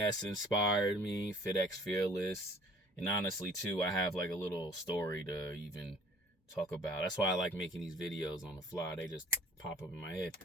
inspired me, FitX Fearless, and honestly, too, I have like a little story to even talk about. That's why I like making these videos on the fly. They just pop up in my head.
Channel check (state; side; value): normal; both; correlation 0.53